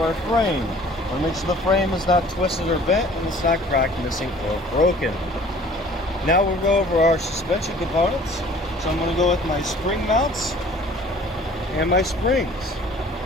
our frame. I want to make sure the frame is not twisted or bent and it's not cracked, missing, or broken. Now we'll go over our suspension components. So I'm going to go with my spring mounts and my springs.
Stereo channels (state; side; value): normal; both; correlation 0.51